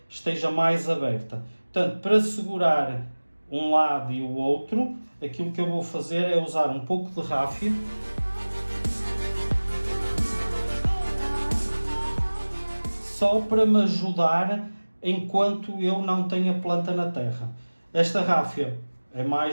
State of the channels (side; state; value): both; inverted; correlation -1.00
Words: esteja mais aberta. Portanto, para segurar um lado e o outro, aquilo que eu vou fazer é usar um pouco de ráfia. Só para me ajudar enquanto eu não tenho a planta na terra. Esta ráfia é